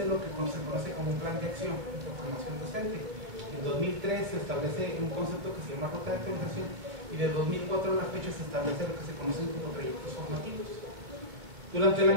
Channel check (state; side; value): late; left; 2.3 ms